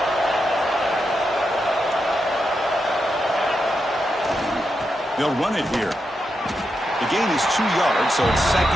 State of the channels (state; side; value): normal; both; correlation 0.85